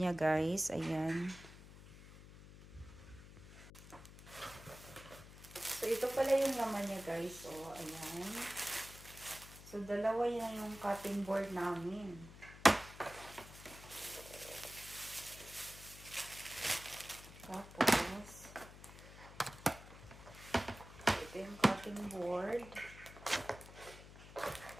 guys. Ayan. So, ito pala yung laman niya, guys. So, ayan. So, dalawa yan yung cutting board namin. Tapos, ito yung cutting board.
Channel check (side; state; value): left; noise; hum, 16 dB below the sound